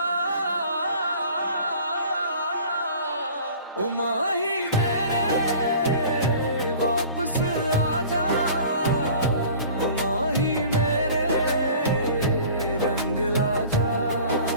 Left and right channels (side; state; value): both; inverted; correlation -0.45